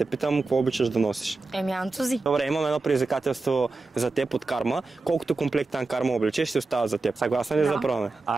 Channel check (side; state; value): left; quieter; 3.6 dB